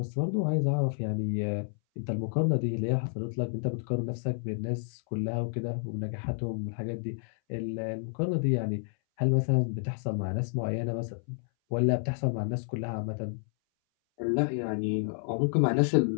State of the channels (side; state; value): right; silent; 58 dB below the other